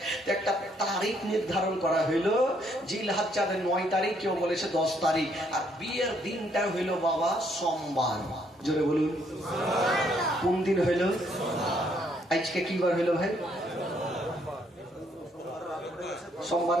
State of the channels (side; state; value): both; normal; correlation 0.70